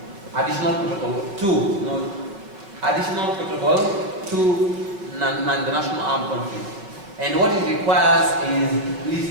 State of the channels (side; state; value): left; late; 5.1 ms